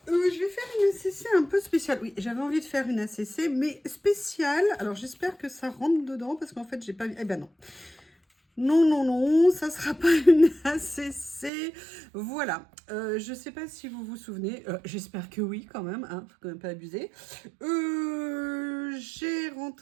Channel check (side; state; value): left; drops out; at 11.5 s